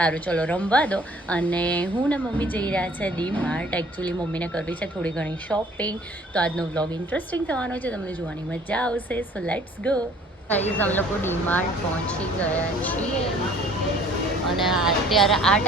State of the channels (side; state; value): both; normal; correlation 0.54